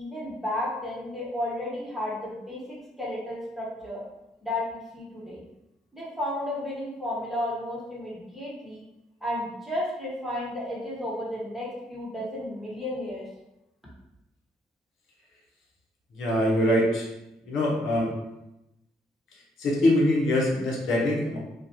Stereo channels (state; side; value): normal; both; correlation 0.69